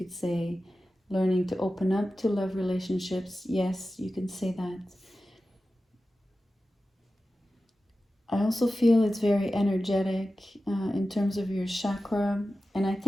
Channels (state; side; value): normal; both; correlation 0.94